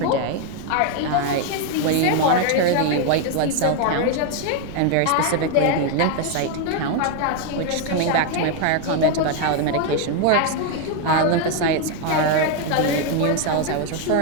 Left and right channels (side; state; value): both; different; correlation 0.01